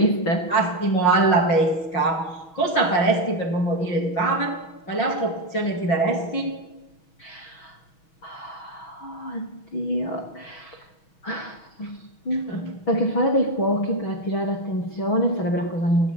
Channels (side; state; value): right; late; 6.2 ms